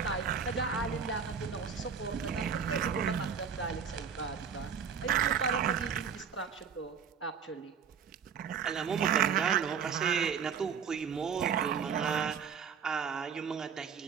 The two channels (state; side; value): quieter; left; 7.0 dB